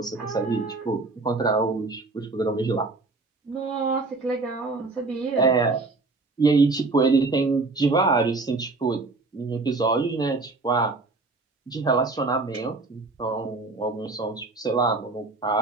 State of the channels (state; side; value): quieter; left; 3.6 dB